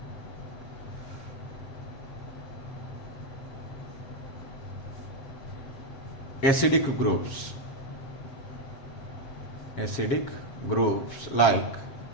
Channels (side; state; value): right; late; 7.3 ms